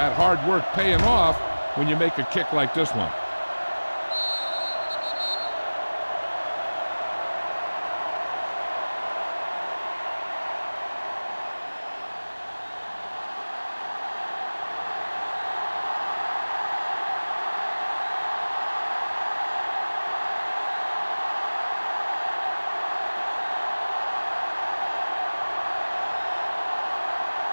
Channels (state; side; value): inverted; both; correlation -1.00